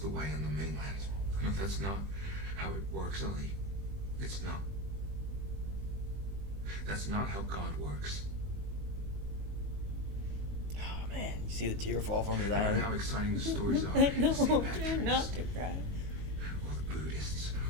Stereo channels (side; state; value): left; late; 20 ms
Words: way on the mainland. No, that's not how it works, Ollie. It's not. That's not how God works. Oh man, you see the tear fall from his No matter eye. how exciting the stories are, No, St. try Patrick's, not to cry. or the Buddhists,